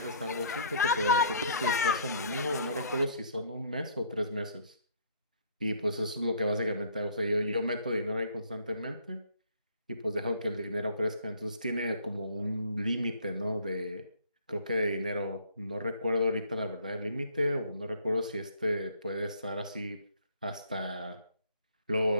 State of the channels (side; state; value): both; inverted; correlation -0.59